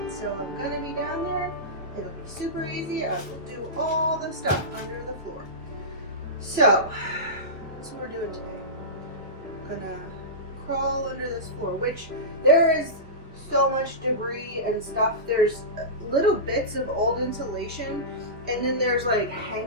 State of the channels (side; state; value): both; normal; correlation -0.18